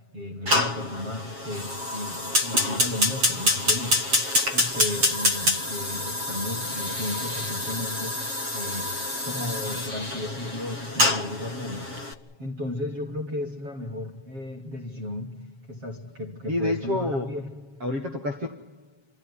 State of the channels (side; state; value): left; late; 7.4 ms